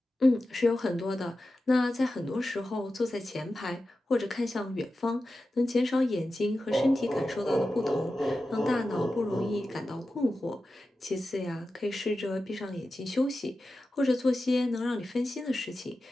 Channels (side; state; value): both; normal; correlation 0.93